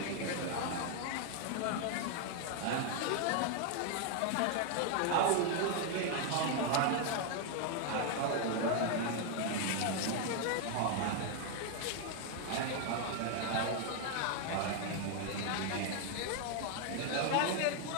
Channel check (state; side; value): different; both; correlation 0.00